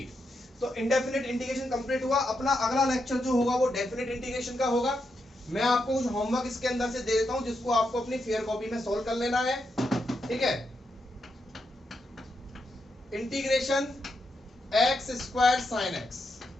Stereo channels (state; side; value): normal; both; correlation 0.83